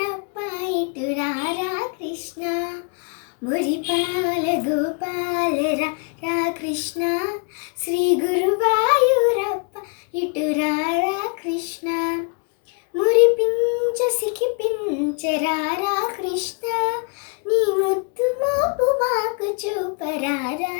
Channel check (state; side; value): quieter; right; 37.4 dB